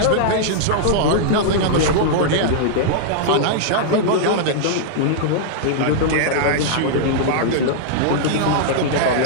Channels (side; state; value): both; different; correlation -0.01